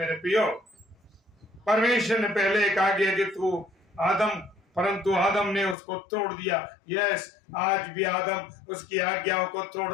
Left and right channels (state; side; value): drops out; right; at 5.8 s